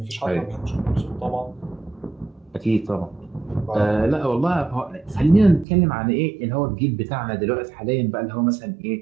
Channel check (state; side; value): drops out; left; at 5.7 s